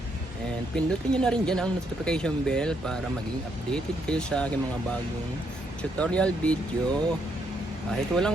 And pindutin nyo na rin dyan ang notification bell para maging updated kayo sa aking mga bagong tutorial video. Kahit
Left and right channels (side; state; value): both; normal; correlation 0.75